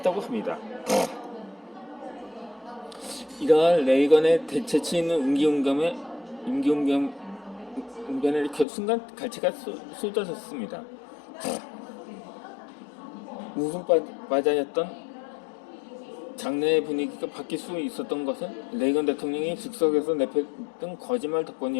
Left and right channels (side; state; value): right; drops out; at 8.7 s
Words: 합니다. 이러한 레이건의 재치 있는 임기응변에 순간 갈채가 쏟아졌습니다. 웃음바다였던 장내의 분위기가 바뀔 수 있었던 것은 레이건 대통령이 즉석에서 내뱉은 거짓말